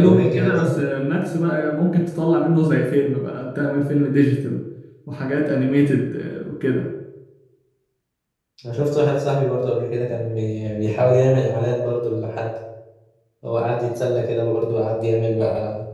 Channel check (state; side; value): identical; both; correlation 1.00